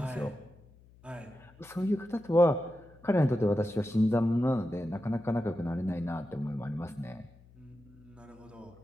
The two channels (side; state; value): left; noise; hum, 25 dB below the sound